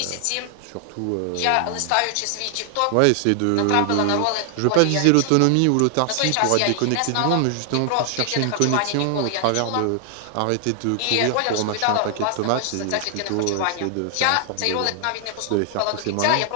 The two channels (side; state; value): both; different; correlation 0.00